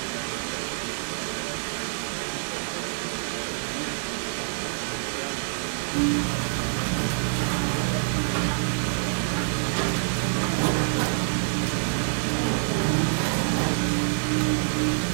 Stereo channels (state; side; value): silent; left; digital silence